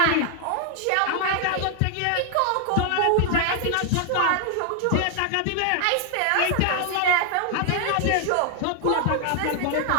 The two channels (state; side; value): different; both; correlation 0.00